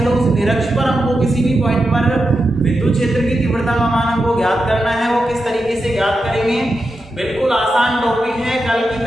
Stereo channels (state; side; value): normal; both; correlation 0.88